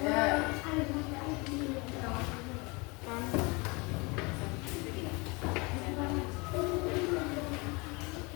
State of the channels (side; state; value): right; quieter; 27.5 dB